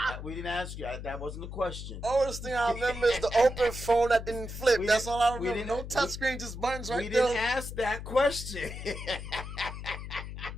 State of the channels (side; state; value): left; noise; hum, 9 dB below the sound